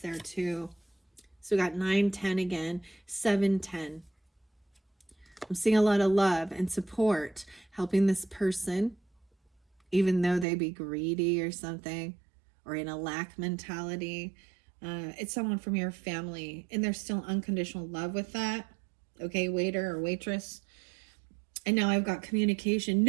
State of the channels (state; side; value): drops out; left; at 10.5 s